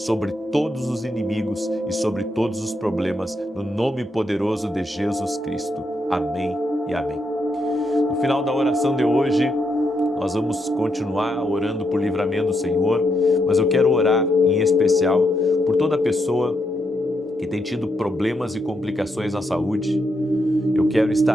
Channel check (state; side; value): normal; both; correlation 0.80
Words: todos os inimigos e sobre todos os problemas, no nome poderoso de Jesus Cristo. Amém e amém. No final da oração de hoje, nós vamos continuar orando por livramento do Senhor, mas eu quero orar em especial por toda pessoa que tem tido problemas e complicações na saúde. Eu quero